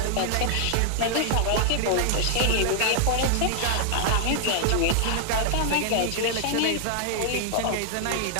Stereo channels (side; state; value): both; different; correlation 0.00